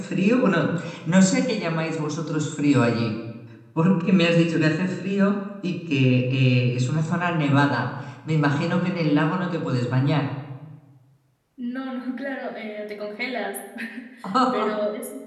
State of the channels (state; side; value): identical; both; correlation 1.00